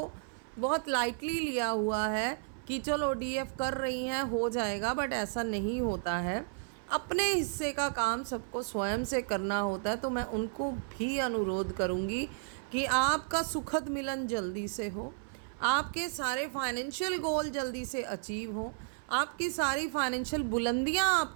बहुत लाइटली लिया हुआ है कि चलो डीएफ कर रही हैं हो जाएगा, बट ऐसा नहीं होता है। अपने हिस्से का काम सबको स्वयं से करना होता है। तो मैं उनको भी अनुरोध करूँगी कि आपका सुखद मिलन जल्दी से हो, आपके सारे फाइनेंशियल गोल जल्दी से अचीव हो, आपकी सारी फाइनेंशियल बुलंदियां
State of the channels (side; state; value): left; silent; 56 dB below the other